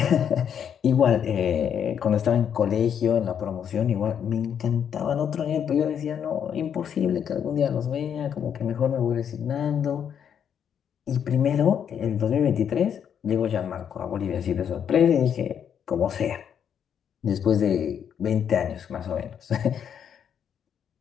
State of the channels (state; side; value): quieter; right; 8.4 dB